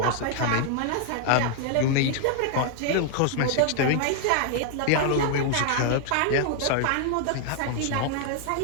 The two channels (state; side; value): different; both; correlation 0.00